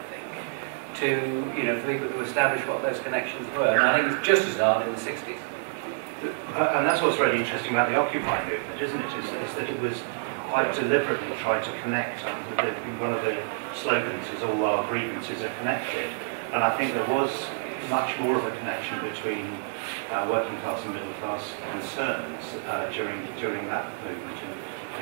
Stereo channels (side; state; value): left; silent; digital silence